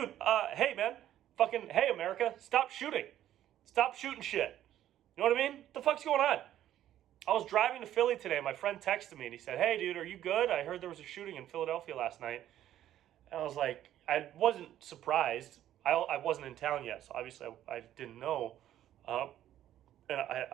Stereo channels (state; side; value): quieter; left; 12.1 dB